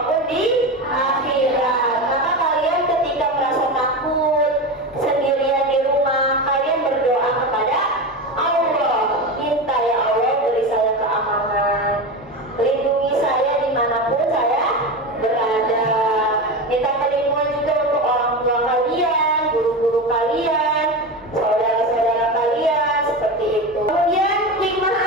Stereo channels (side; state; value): both; normal; correlation 0.22